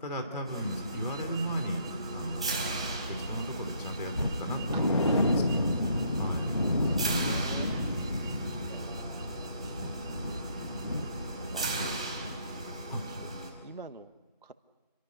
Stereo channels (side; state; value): both; inverted; correlation -0.67